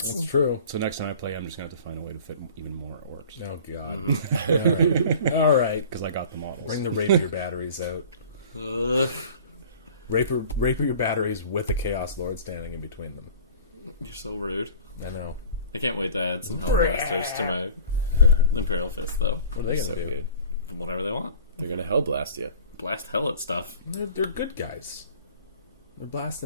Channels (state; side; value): inverted; both; correlation -0.44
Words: That's true. So next time I play, I'm just gonna have to find a way to fit even more orcs Oh god. All right. because I got the models. Bring the rapier batteries out. Ugh. Rapier batteries with a Chaos Lord standing in between them. You're so rude. I know. I can't wait to add some Hellblasters to my Imperial Fist, though. What are they So gonna do? good. Whatever they want. They're gonna hell blast you. Blast hell at stuff. They're good guys. They're